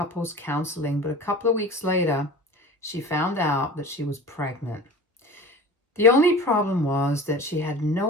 counseling, but a couple of weeks later, she found out that she was pregnant. The only problem was that she had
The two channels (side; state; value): both; normal; correlation 0.37